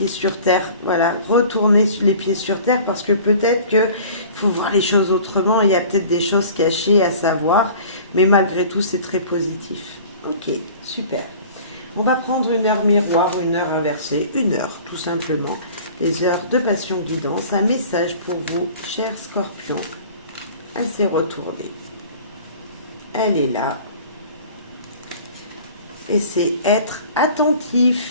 sur terre, voilà, retourner les pieds sur terre parce que peut-être qu'il faut voir les choses autrement, il y a peut-être des choses cachées à savoir, mais malgré tout c'est très positif. Ok, super. On va prendre une heure miroir ou une heure inversée, une heure tout simplement. Les heures de passion guidance, un message pour vous, cher Scorpion. Elle s'est retournée. Elle est là. Et c'est être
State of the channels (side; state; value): both; inverted; correlation -0.45